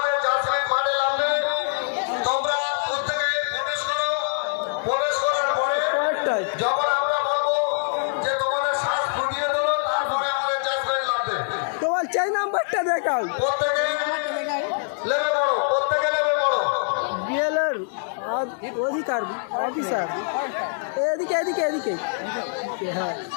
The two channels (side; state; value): right; silent; 62 dB below the other